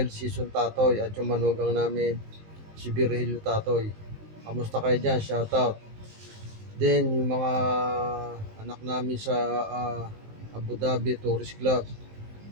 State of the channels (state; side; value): late; left; 19 ms